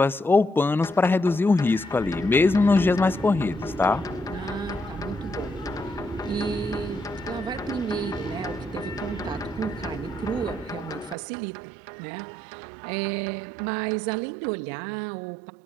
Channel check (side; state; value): left; drops out; at 11.2 s